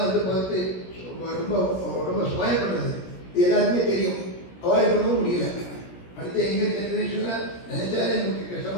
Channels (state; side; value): late; right; 16 ms